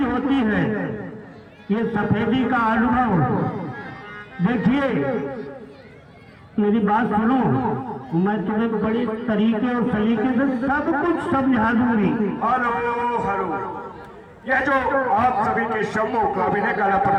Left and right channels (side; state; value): both; identical; correlation 1.00